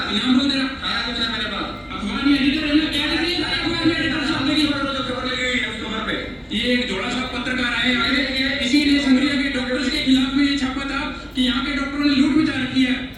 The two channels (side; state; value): both; identical; correlation 1.00